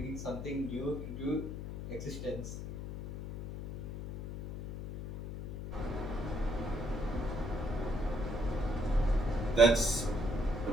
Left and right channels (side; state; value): left; noise; hum, 7 dB below the sound